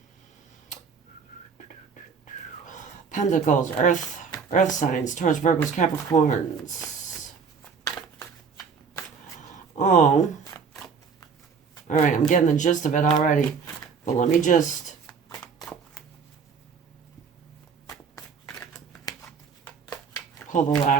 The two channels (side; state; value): left; quieter; 5.9 dB